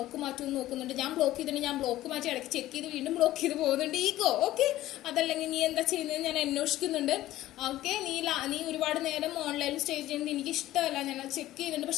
മാറ്റുമെന്ന് നോക്കുന്നുണ്ട്, ഞാൻ ബ്ലോക്ക് ചെയ്തിട്ടുണ്ടെങ്കിൽ ഞാൻ ബ്ലോക്ക് മാറ്റി ഇടയ്ക്ക് ചെക്ക് ചെയ്ത് വീണ്ടും ബ്ലോക്ക് ചെയ്ത് പോകുന്നുണ്ട്. ഈഗോ. ഓക്കെ, അതല്ലെങ്കിൽ നീ എന്താ ചെയ്യുന്നത് ഞാൻ അന്വേഷിക്കുന്നുണ്ട്. ഓക്കെ, നീ ഒരുപാട് നേരം ഓൺലൈനിൽ സ്റ്റേ ചെയ്യുന്നത് എനിക്ക് ഇഷ്ടമല്ല, ഞാൻ അത് ചെക്ക് ചെയ്യുന്നുണ്ട്,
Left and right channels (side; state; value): right; quieter; 15.0 dB